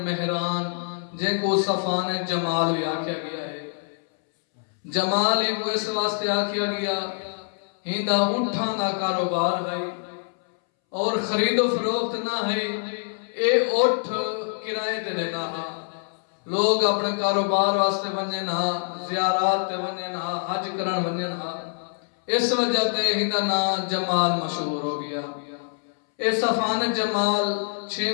مہران، جن کو صفان جمال بھی آکھیا گیا ہے. جمال ہی کو اس واسطے آکھیا گیا ہندہ اٹھاں دا کاروبار ہے اور خرید و فروخت نہ ہے. اے اٹھ کرائے تے دینا ہے. لوگ اپنے کاروبار واسطے ونجن ہاں، زیارات تے ونجن ہاں، حج کرن ونجن ہاں. اس وجہ تے ہندہ نا جمال مشہور ہو گیا. اے صفان جمال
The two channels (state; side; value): silent; right; 62 dB below the other